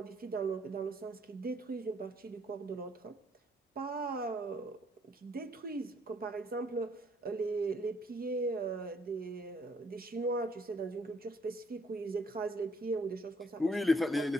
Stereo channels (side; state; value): both; normal; correlation 0.66